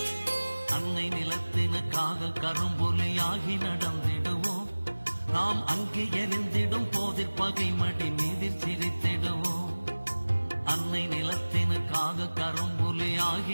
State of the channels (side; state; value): both; inverted; correlation -1.00